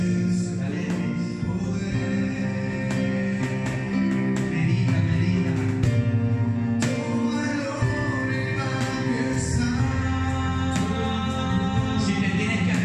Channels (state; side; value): identical; both; correlation 1.00